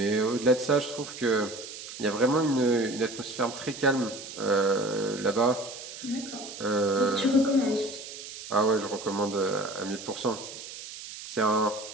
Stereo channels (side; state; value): right; noise; hiss, 12 dB below the sound